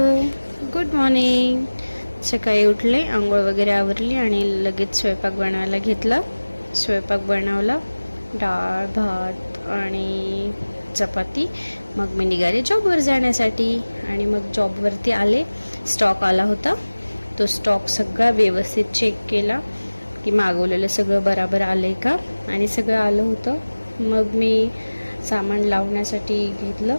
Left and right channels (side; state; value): both; inverted; correlation -1.00